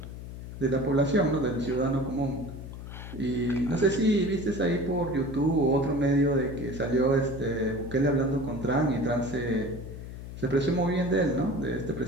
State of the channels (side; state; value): left; noise; hum, 11 dB below the sound